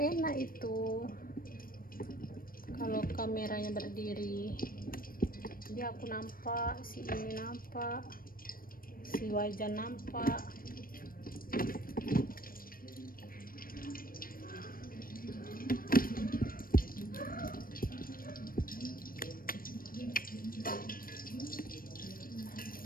itu, kalau kameranya berdiri jadi aku nampak, si ini nampak, si wajah nampak.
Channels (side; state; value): right; late; 0.41 ms